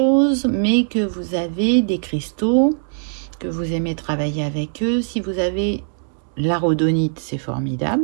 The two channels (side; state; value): left; silent; digital silence